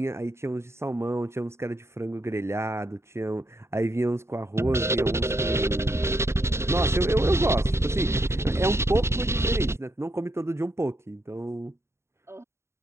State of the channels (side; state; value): left; late; 0.13 ms